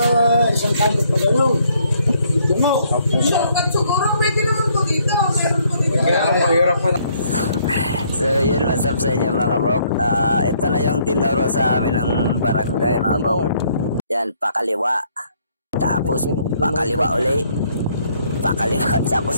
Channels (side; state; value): both; inverted; correlation -0.67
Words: isang kanto pa kayo. Ito mo. Siguro pwede naman po dito. Meron po dito. So yun, what's up sa inyo mga bok. Ito na yung tinuro sa amin ng barangay mga bok. Yan, pakaliwa. Tapos pakaliwa uli. pakaliwa